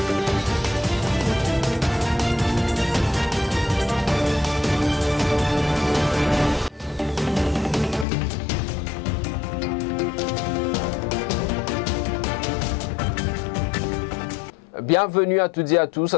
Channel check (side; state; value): right; drops out; at 8.1 s